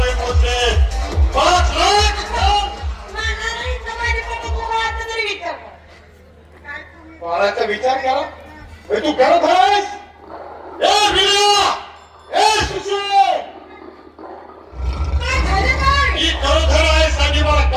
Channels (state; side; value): identical; both; correlation 1.00